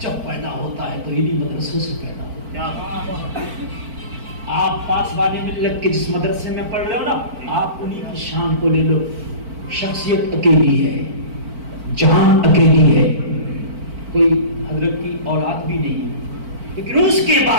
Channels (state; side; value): late; left; 4.5 ms